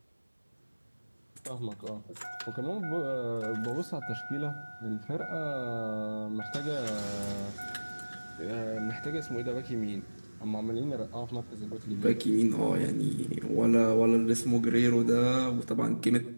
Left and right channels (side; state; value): both; inverted; correlation -1.00